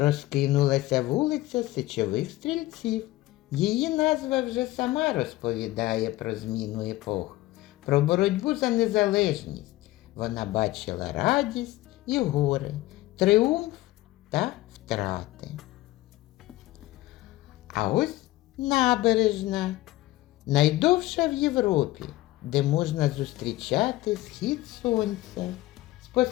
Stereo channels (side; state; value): right; quieter; 17.5 dB